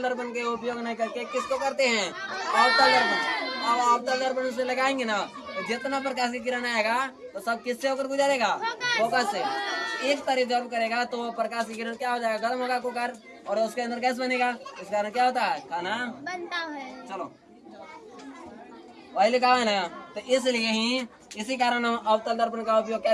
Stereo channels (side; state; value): both; identical; correlation 1.00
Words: दर्पण के उपयोग नहीं करके किसको करते हैं? अवतल दर्पण। अब अवतल दर्पण से लगाएंगे ना तो जितना प्रकाश की किरण आएगा तो सब किससे होकर गुजरेगा? फोकस से। एक तरह एब्जॉर्ब करेगा तो प्रकाश की किरण क्या हो जाएगा? गर्म होगा कुकर और उसके अंदर गैस बनेगा। इस कारण क्या होता है? खाना बनता है। चलो वही लिखा है ना, तो इसलिए ही इसी कारण हम अवतल दर्पण का उपयोग